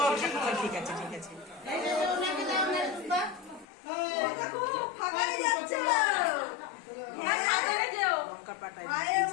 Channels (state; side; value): drops out; right; at 3.7 s